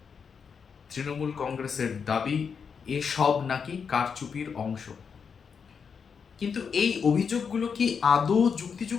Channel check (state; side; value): quieter; right; 6.3 dB